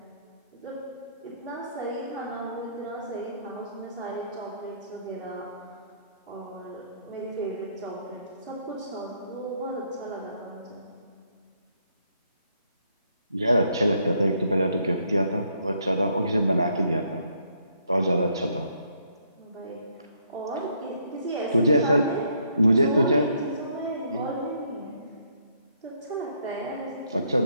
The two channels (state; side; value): inverted; both; correlation -0.70